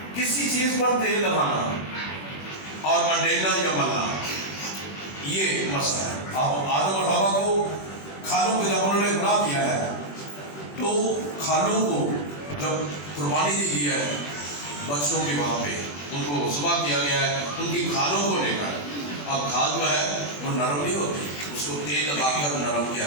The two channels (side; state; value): right; late; 21 ms